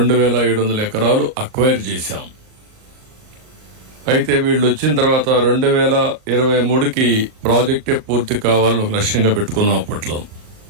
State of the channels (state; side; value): late; left; 38 ms